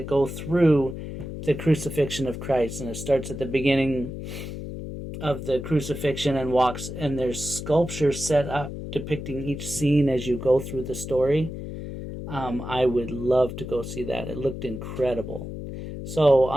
go through the crucifixion of Christ, and it starts at the beginning of the crucifixion and walks, and there's sculptures set up depicting each scene as you go through the story. I would love to go see that. It looked incredible. So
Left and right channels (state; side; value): noise; left; hum, 8 dB below the sound